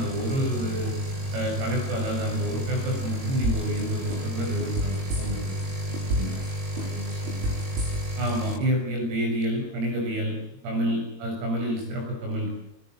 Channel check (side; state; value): left; late; 22 ms